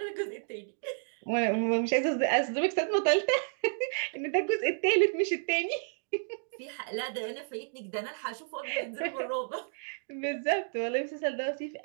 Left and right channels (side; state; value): left; silent; digital silence